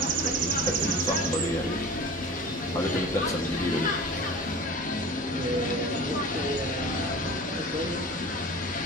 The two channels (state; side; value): normal; both; correlation 0.37